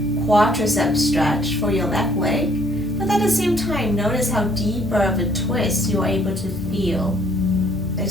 quadricep stretch for your left leg. But at the same time, notice how deeper of a twist you're able to feel.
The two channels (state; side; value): normal; both; correlation 0.62